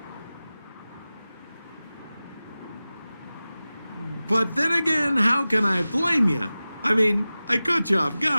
But then again, how can I blame you? I mean, I caught you off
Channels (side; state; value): both; inverted; correlation -0.96